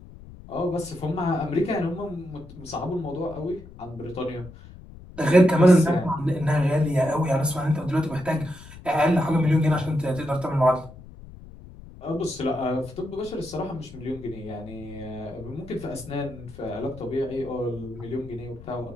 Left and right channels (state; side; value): noise; left; rumble, 18 dB below the sound